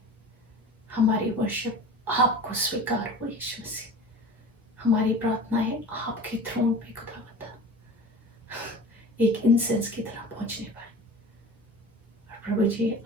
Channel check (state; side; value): normal; both; correlation 0.38